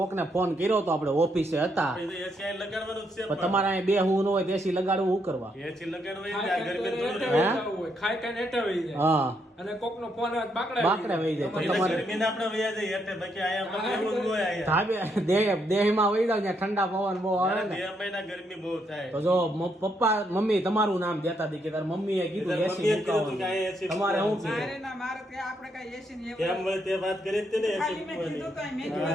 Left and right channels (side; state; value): both; normal; correlation 0.76